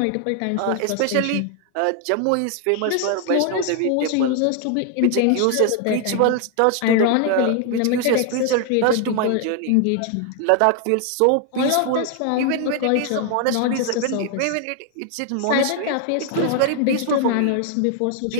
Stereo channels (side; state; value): both; different; correlation 0.00